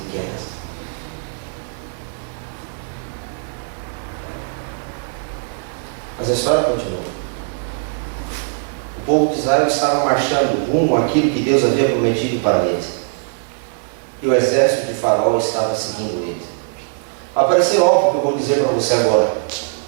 Mas a história continua. O povo de Israel estava marchando rumo àquilo que Deus havia prometido para eles. E o exército de Faraó estava seguindo eles. Vai parecer óbvio o que eu vou dizer para você agora.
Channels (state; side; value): silent; left; digital silence